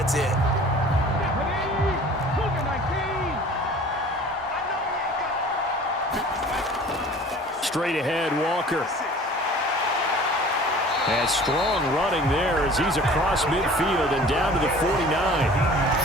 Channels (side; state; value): both; normal; correlation 0.46